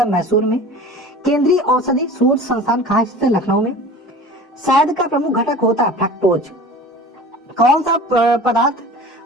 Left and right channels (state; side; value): normal; both; correlation 0.40